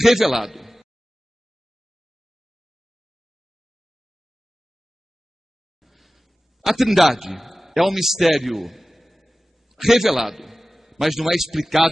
revelado. A Trindade é um mistério revelado, mas não é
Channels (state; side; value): normal; both; correlation 0.96